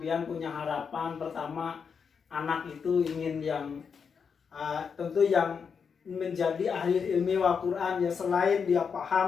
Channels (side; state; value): right; quieter; 6.2 dB